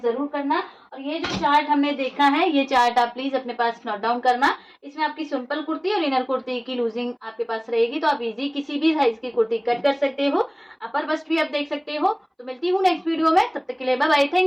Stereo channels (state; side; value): identical; both; correlation 1.00